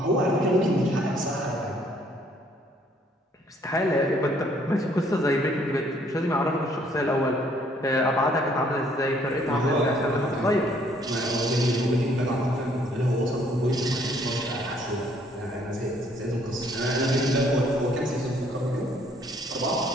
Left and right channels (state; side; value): normal; both; correlation 0.64